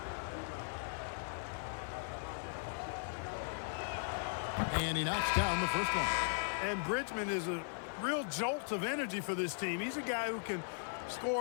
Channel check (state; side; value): silent; right; digital silence